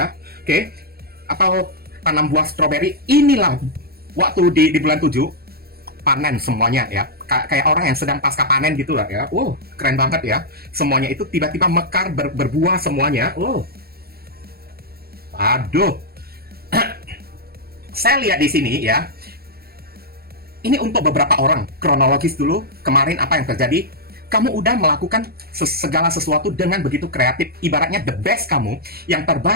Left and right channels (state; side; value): late; left; 0.45 ms